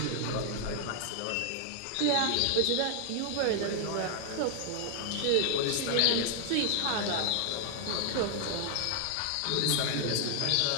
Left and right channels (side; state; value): both; different; correlation 0.00